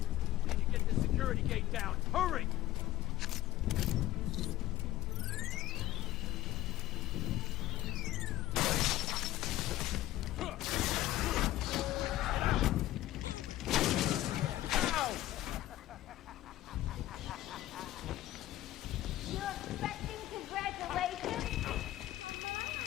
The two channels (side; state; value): right; quieter; 15.2 dB